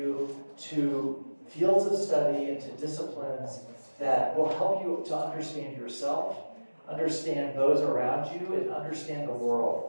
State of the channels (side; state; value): both; inverted; correlation -1.00